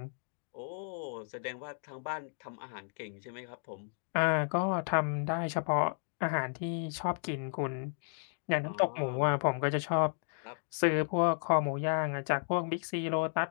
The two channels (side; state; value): right; silent; digital silence